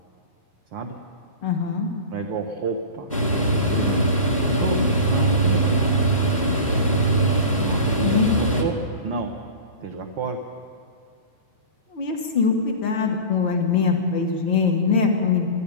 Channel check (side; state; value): both; inverted; correlation -0.32